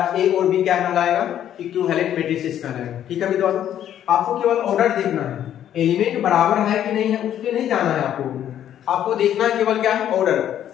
ए और बी क्या कहलाएगा, इक्विवेलेंट मैट्रिसेस कहलाएगा। ठीक है विद्वान, आपको केवल ऑर्डर देखना है, एलिमेंट बराबर है कि नहीं है उस पर नहीं जाना है, आपको देखना है केवल क्या है, ऑर्डर।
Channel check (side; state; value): right; quieter; 10.7 dB